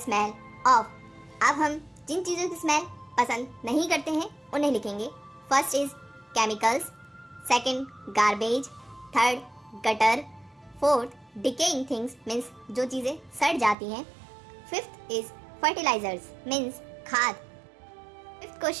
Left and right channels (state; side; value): drops out; left; at 13.8 s